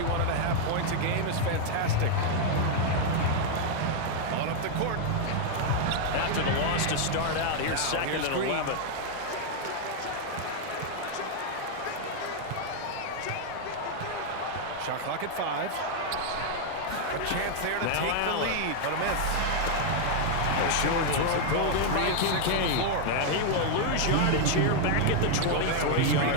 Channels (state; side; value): different; both; correlation 0.00